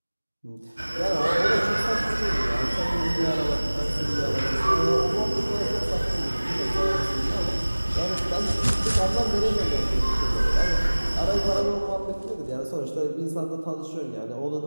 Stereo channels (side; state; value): both; inverted; correlation -1.00